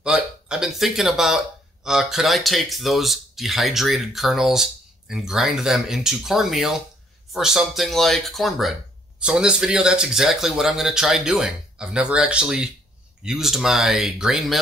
But I've been thinking about, could I take those dehydrated kernels and grind them into cornmeal for something like cornbread? So in this video, that's exactly what I'm going to try doing. I've never actually used my grain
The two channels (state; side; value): normal; both; correlation 0.65